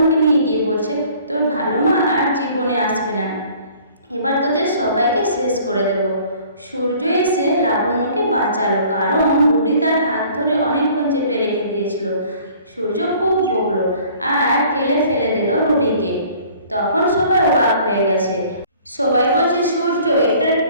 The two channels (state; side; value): inverted; both; correlation -0.53